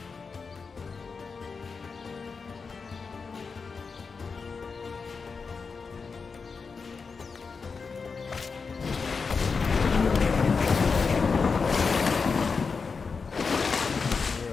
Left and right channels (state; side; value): quieter; right; 5.0 dB